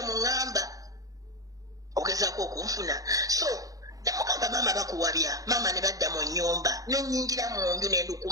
muŋŋamba ogezaako okunfuna so nemugamba mama bakuwabya mama ne badda mu nnyumba nenyingira mu nju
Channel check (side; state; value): left; late; 0.17 ms